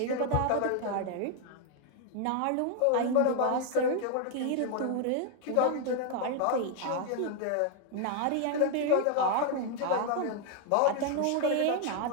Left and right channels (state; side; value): different; both; correlation 0.00